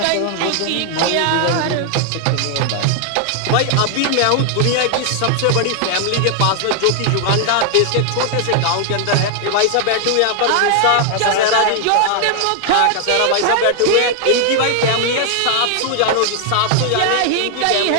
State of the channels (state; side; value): different; both; correlation 0.00